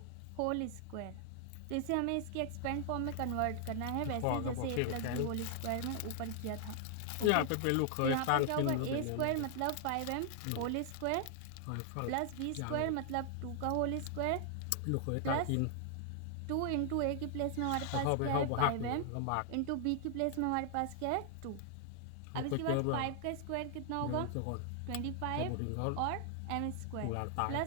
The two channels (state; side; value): different; both; correlation 0.00